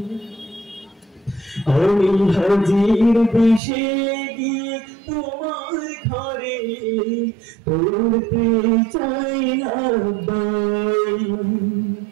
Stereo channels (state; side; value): drops out; left; at 3.6 s